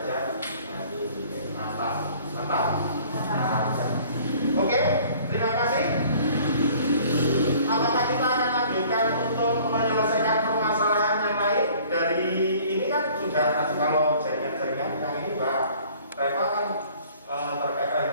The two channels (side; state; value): both; inverted; correlation -0.53